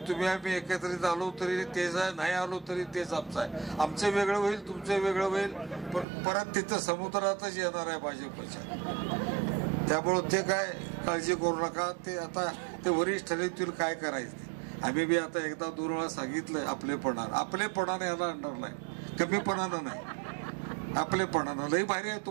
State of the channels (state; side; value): drops out; left; at 6.1 s